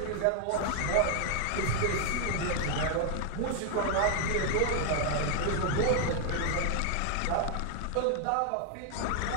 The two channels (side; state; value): both; different; correlation 0.00